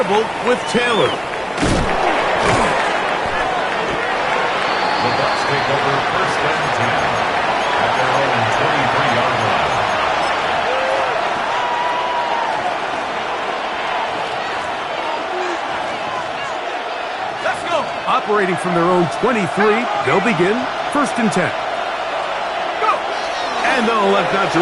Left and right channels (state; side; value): identical; both; correlation 1.00